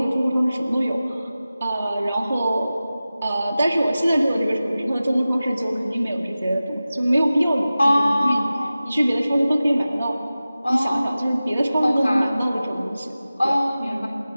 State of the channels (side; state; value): both; inverted; correlation -0.96